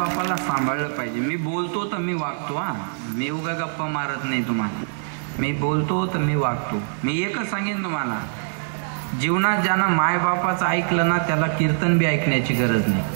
सांभाळलं पाहिजे. मी बोलतो तर मी वागतो. मी उगा गप्पा मारत नाही तुम्हाला. मी बोलतो तर मी वागतो. मी एकच सांगेन तुम्हाला, जीवनात ज्यानं मायबापाचं ऐकलं ना त्याला कीर्तन बी ऐकण्याची गरज नाही.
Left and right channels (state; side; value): silent; left; digital silence